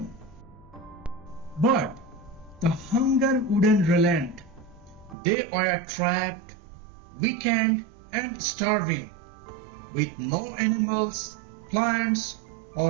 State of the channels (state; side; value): drops out; left; at 5.2 s